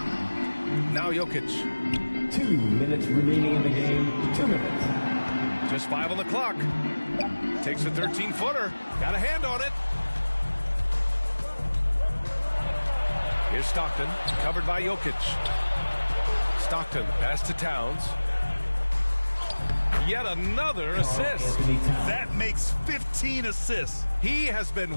Now Jokic. 2 minutes remaining in the game. 2 minutes. Just 5 on the clock. Takes a 13-footer. Got a hand on it. Here's Stockton. Covered by Jokic. Stockton. Pass to Towns. Yet another assist. That makes 15 assists. He has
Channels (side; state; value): both; inverted; correlation -1.00